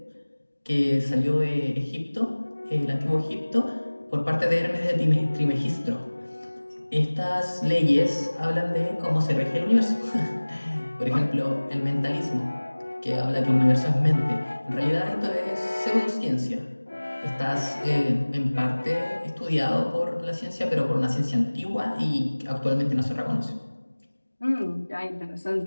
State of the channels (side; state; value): both; inverted; correlation -1.00